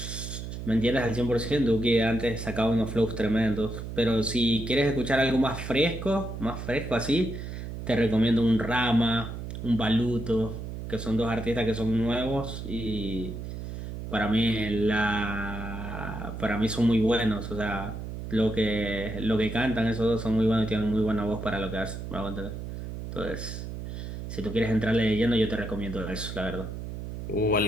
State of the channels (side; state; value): right; noise; hum, 7 dB below the sound